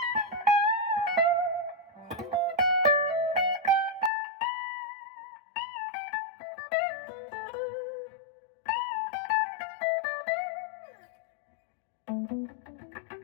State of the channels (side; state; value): right; drops out; at 4.1 s